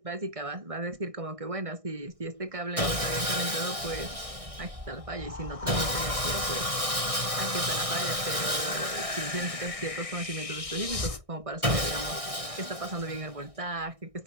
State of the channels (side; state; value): left; late; 1.6 ms